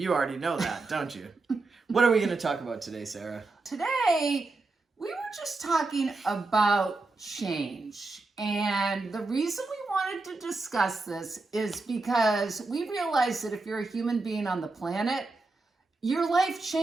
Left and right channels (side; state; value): left; quieter; 3.5 dB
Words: already know that, don't you? What are we going to talk about today, Sarah? Today, we were just talking about change. And the reason we wanted to discuss this is because we realize that if you're a human being on the planet, your life